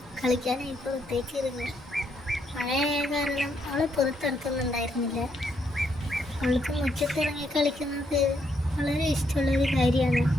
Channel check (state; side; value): normal; both; correlation 0.75